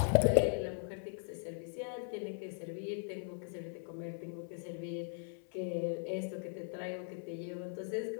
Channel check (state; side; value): silent; right; 52 dB below the other